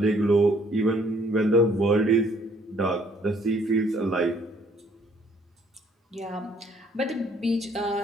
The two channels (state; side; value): normal; both; correlation 0.63